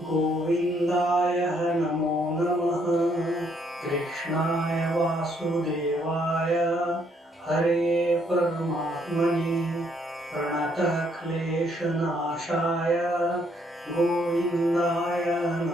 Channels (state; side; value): normal; both; correlation 0.70